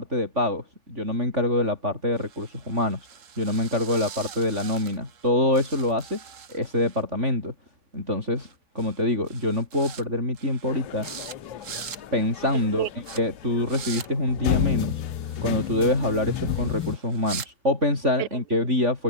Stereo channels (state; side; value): late; left; 3.7 ms